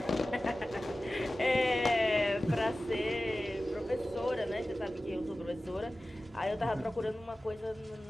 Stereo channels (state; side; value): normal; both; correlation 0.96